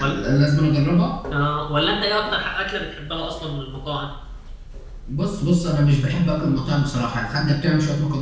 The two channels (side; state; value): both; identical; correlation 1.00